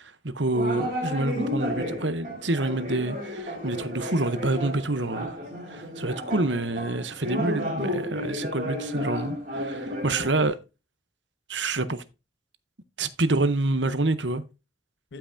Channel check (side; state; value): both; normal; correlation 0.41